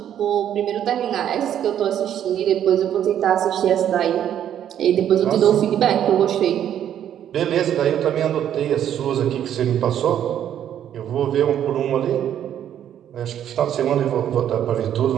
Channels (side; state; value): left; quieter; 10.2 dB